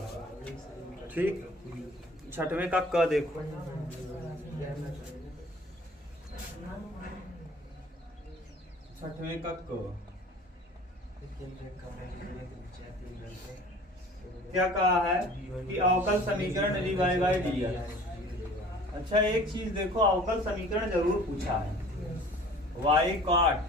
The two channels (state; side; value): normal; both; correlation 0.47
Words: ठीक, छठवें का क देखो। छठवें का क क्या कहा है कि अवकल समीकरण dy बाई dx। अच्छा एक चीज देखो, अवकल समीकरण जरूर पूछा है। y cot